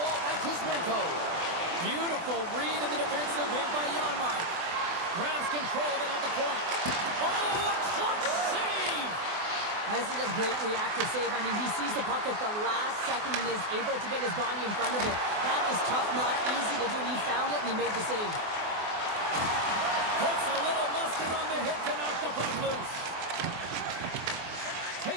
by Kuzmenko. Beautiful read in the defensive end by Janmark. Grabs control of it at the point. Oh, a clutch save! This is a great reactive save. I mean, he sees the puck at the last second and is able to get his body in front of it. That is tough, not easy to do. He found it, and he made the save. Puts a little mustard on the hit to knock the puck loose.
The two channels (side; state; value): left; late; 24 ms